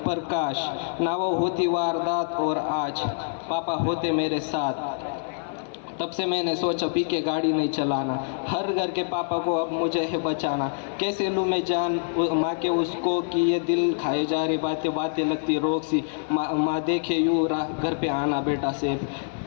काश ना वो होती वारदात और आज पापा होते मेरे साथ। तब से मैंने सोचा पी के गाड़ी नहीं चलाना, हर घर के पापा को अब मुझे है बचाना। कैसे लूँ मैं जान माँ के उसको कि ये दिल खाए जा रही बातें बातें लगती रोक सी। माँ देखे यूँ घर पे आना बेटा से,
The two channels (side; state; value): right; silent; 55 dB below the other